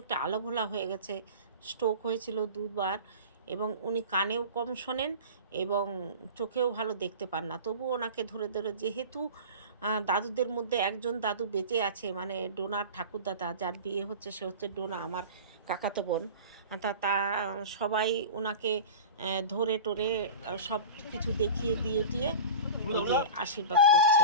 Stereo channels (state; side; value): inverted; both; correlation -0.34